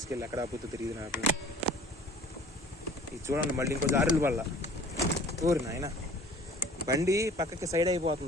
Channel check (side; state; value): both; normal; correlation 0.48